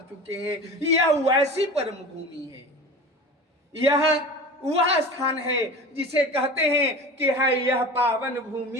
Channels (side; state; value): both; normal; correlation 0.35